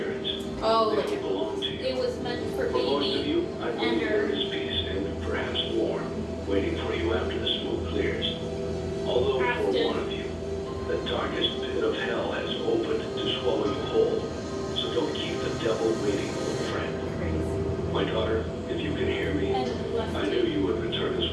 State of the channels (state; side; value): identical; both; correlation 1.00